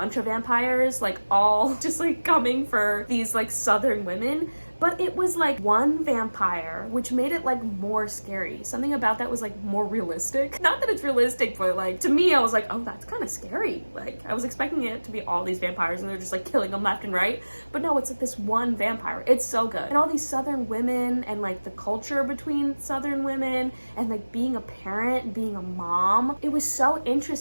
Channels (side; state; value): both; inverted; correlation -1.00